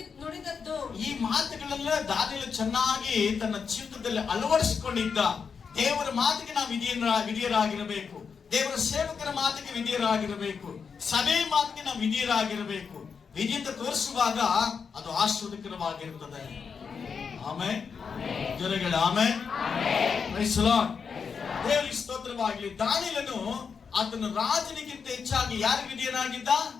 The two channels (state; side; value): quieter; right; 6.0 dB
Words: ಈ ಮಾತುಗಳೆಲ್ಲ ದಾನಿಯೇಲ ಚೆನ್ನಾಗಿ ತನ್ನ ಜೀವಿತದಲ್ಲಿ ಅಳವಡಿಸಿಕೊಂಡಿದ್ದ. ದೇವರ ಮಾತಿಗೆ ನಾವು ವಿಧೇಯರಾಗಿರಬೇಕು. ದೇವರ ಸೇವಕರ ಮಾತಿಗೆ ವಿಧೇಯರಾಗಿರಬೇಕು. ಸಭೆ ಮಾತಿಗೆ ನಾವು ವಿಧೇಯರಾಗಿರಬೇಕು. ವಿಧೇಯತೆ ತೋರಿಸುವಾಗ ಅದು ಆಶೀರ್ವಾದಕರವಾಗಿರುತ್ತದೆ. ಆಮೆನ್. ಜೊತೆಗೆ ಆಮೆನ್. Praise the lord. ದೇವರಿಗೆ ಸ್ತೋತ್ರವಾಗಲಿ. ದಾನಿಯೇಲನು ಆತನ ರಾಜನಿಗಿಂತ ಹೆಚ್ಚಾಗಿ ಯಾರಿಗೆ ವಿಧೇಯನಾಗಿದ್ದ?